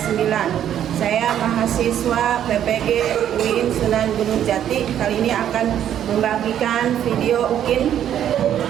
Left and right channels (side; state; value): left; quieter; 10.3 dB